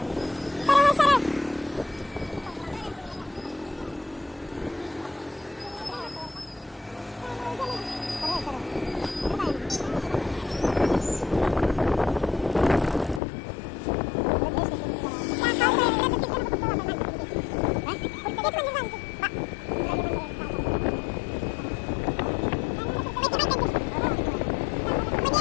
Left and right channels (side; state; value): right; drops out; at 13.2 s